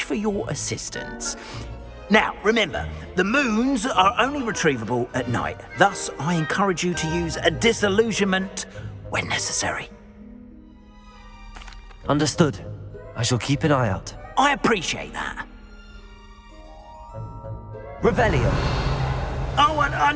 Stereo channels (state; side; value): identical; both; correlation 1.00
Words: for your assistance. Now, remember, the moons are only retrievable at night. Thus, I encourage you to use a disillusionment when necessary. Understood. I shall keep an eye out. I appreciate that. Revelio. Oh, and I